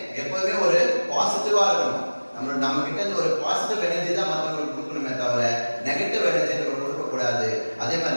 எப்பவுமே ஒரு பாசிட்டிவா இருக்கணும். நம்ம கிட்ட இருந்து ஒரு பாசிட்டிவ் எனர்ஜி தான் மற்றவங்களுக்கு கொடுக்கணுமே தவிர நெகட்டிவ் எனர்ஜி நம்ம கொடுக்க கூடாது. அதே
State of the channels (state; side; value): inverted; both; correlation -1.00